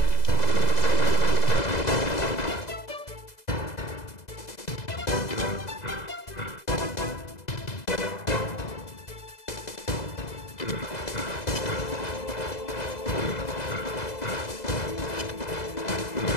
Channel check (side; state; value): right; late; 2.0 ms